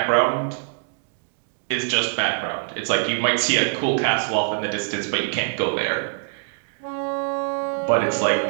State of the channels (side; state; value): left; silent; digital silence